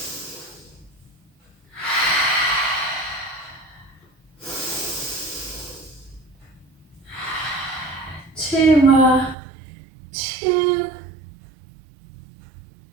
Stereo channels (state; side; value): drops out; left; at 9.3 s